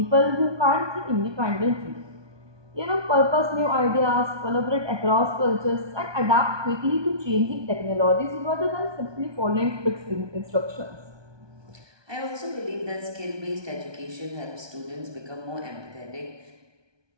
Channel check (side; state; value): left; late; 1.2 ms